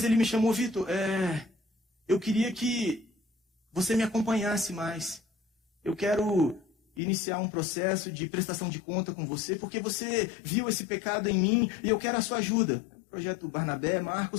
ele me chamou, Vitor, eu queria que você me acompanhasse mais. Eu quero iniciar um processo de prestação de conta com você, porque você viu esse pecado em mim e eu quero a sua ajuda. Projeto Barnabé,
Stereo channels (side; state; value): right; drops out; at 7.0 s